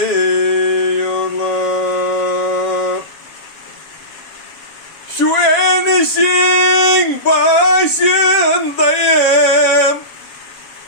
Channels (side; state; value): right; late; 7.5 ms